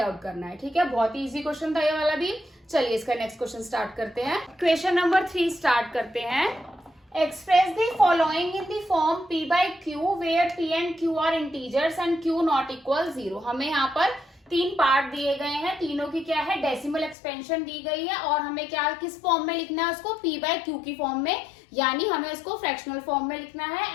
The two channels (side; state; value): right; drops out; at 17.2 s